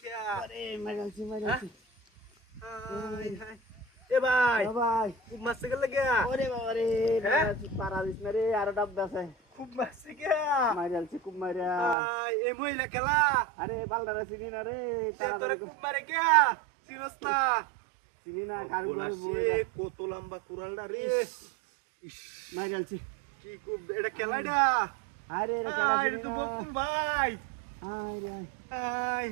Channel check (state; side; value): drops out; left; at 12.0 s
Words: আরে মাইরালছে এ ভাই ভাই খুব মারছে গেল গিয়া ওরে বাবা রে পারা দিস না রে আরো ডাব আছে খুব মারছে গিয়া মাইরালছে খুব মাইরা এ মহিলা খেলা আরে বালদারা চিনি না রে তোরে খুব মারে গিয়া চিনস না চিনি না কারুর কত লম্বা কুড়ালটা রে মাইরালছে কি খুব এটা খেলাটা আরে রে এটা তো বকুল ভাই আরে আই